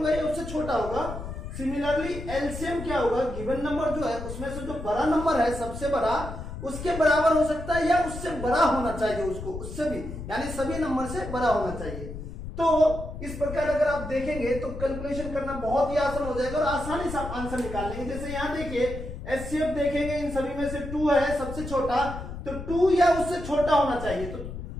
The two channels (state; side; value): noise; left; rumble, 9 dB below the sound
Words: या उससे छोटा होगा। सिमिलरली एलसीएम क्या होगा, गिवन नंबर जो है उसमें से जो बड़ा नंबर है सबसे बड़ा उसके बराबर हो सकता है या उससे बड़ा होना चाहिए, उसको उससे भी, यानी सभी नंबर से बड़ा होना चाहिए। तो इस प्रकार अगर आप देखेंगे तो कैलकुलेशन करना बहुत ही आसान हो जाएगा और आसानी से आप आंसर निकाल लेंगे। जैसे यहाँ देखिए एचसीएफ देखेंगे इन सभी में से 2 है सबसे छोटा, तो 2 या उससे छोटा होना चाहिए। तो